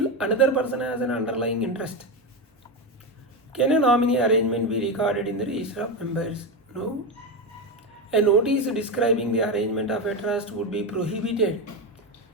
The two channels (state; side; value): normal; both; correlation 0.14